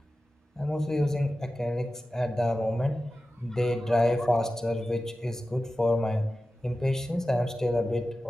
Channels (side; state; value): both; normal; correlation 0.94